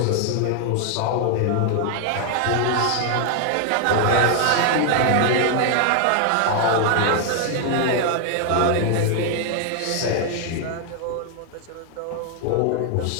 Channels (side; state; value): both; different; correlation 0.00